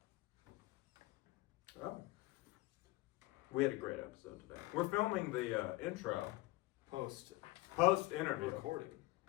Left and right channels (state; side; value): quieter; right; 20.3 dB